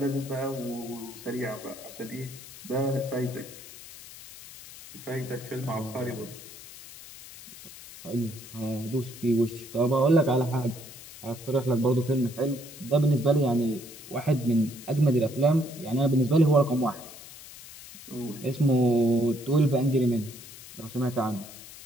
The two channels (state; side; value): noise; left; hiss, 16 dB below the sound